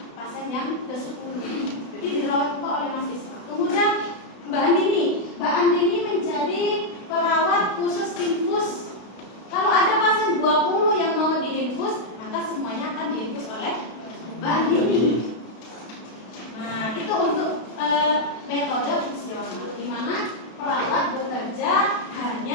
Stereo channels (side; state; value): right; late; 32 ms